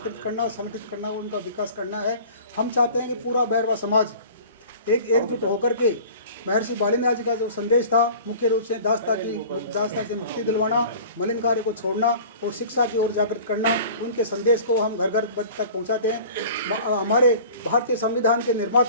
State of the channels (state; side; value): inverted; both; correlation -0.43